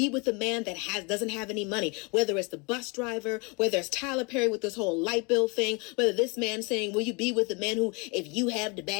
with a man that doesn't have any money? Whether it's the bus driver, whether it's Tyler Perry with this whole light bill thing, whether this man saying, will you be with a man who, if you have the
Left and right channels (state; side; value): quieter; right; 30.2 dB